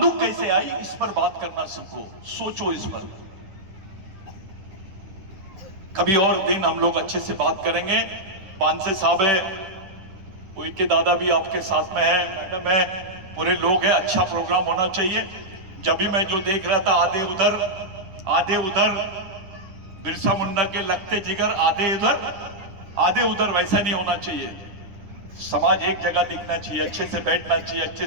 कैसे आई? इस पर बात करना सीखो, सोचो इस पर। कभी और दिन हम लोग अच्छे से बात करेंगे। पांसे साहब है, उनके दादा भी आपके साथ में है, मैडम है, पूरे लोग हैं। अच्छा प्रोग्राम होना चाहिए। जब भी मैं जो देख रहा था, आधे उधर बिरसा मुंडा के लगते जिगर, आधे उधर, वैसा नहीं होना चाहिए। समाज एक जगह दिखना चाहिए, अच्छे से बैठना चाहिए, अच्छे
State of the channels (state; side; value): late; left; 9.8 ms